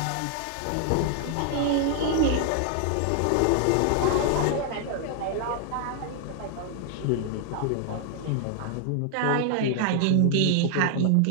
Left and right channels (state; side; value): different; both; correlation 0.00